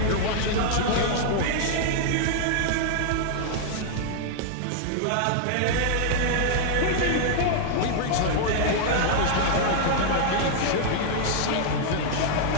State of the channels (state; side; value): different; both; correlation -0.01